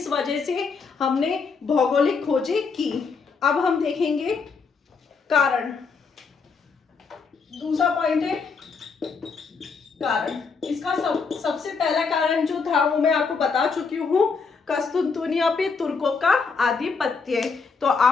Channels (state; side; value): quieter; right; 5.0 dB